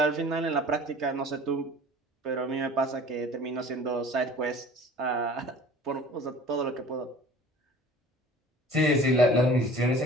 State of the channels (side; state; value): both; normal; correlation 0.45